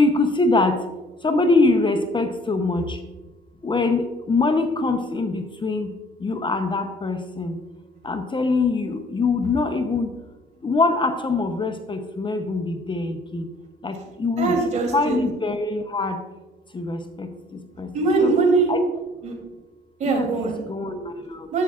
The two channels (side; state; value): both; normal; correlation 0.57